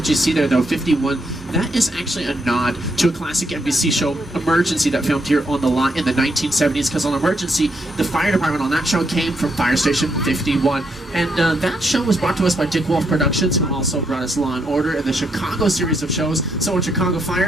you see there, though, 51, that is actually a nod to a classic NBC show, Emergency, that filmed here on the lot in the 1970s, because on Emergency, the fire department on that show came from Fire Station 51. And that show was brought to us by Dick Wolf Productions, who also brought us Law & Order and the Chicago series of shows. So on Chicago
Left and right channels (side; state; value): both; normal; correlation 0.77